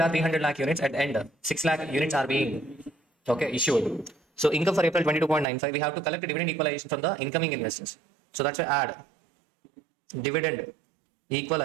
are 300 lakh units. At the end, 6 lakh units are being issued. So income for April 22.95. We have to collect dividend equalization from the incoming investors. So that's why add dividend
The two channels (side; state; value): left; drops out; at 5.5 s